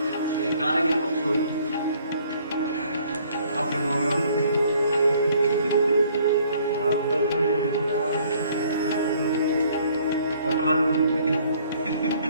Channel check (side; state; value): both; inverted; correlation -0.61